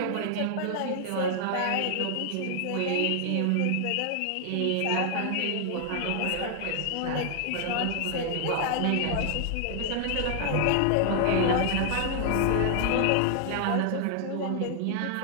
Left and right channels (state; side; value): different; both; correlation 0.00